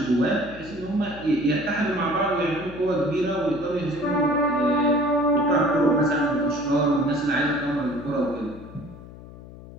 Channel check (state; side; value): noise; left; hum, 17 dB below the sound